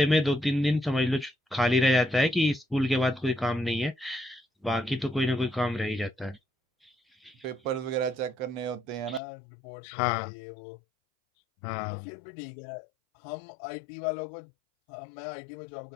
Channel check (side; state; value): right; drops out; at 9.2 s